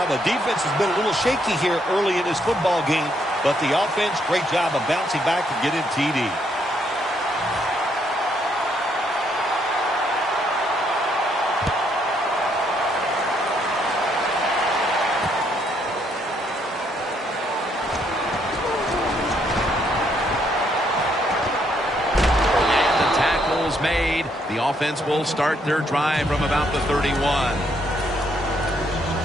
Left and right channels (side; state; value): both; normal; correlation 0.72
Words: The defense has been a little shaky here early in this football game, but the offense, great job of bouncing back and getting TD. Made. The offense will start their drive from about the 31.